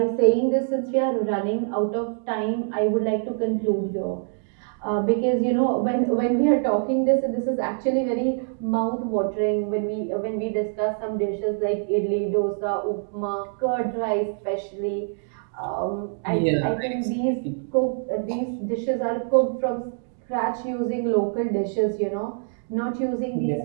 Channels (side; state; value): left; silent; digital silence